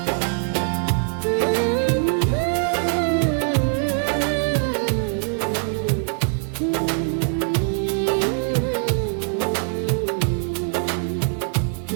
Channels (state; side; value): silent; left; 62 dB below the other